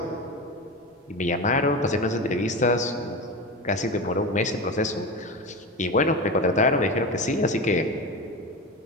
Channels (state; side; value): normal; both; correlation 0.23